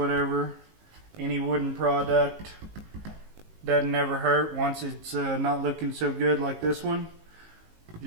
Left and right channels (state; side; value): late; left; 19 ms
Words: Any wooden product doesn't ever hurt once it's not looking so good like this one.